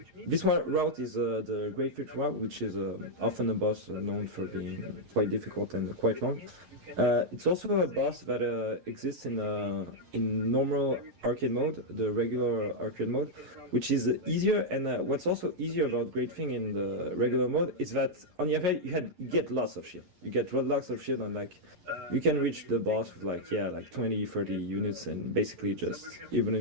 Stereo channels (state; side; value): late; left; 11 ms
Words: this one route is the Great Fit route, which is often a boss known for being quite difficult and quite long. It's also a boss that exists in normal arcade mode, the regular arcade mode, which is easier. And what's also easier about Great Thing in the regular mode is that on the other hand, you get lots of shield. You get lots of shield, and like you can reach the boss with like 20, 30 units, and basically just, even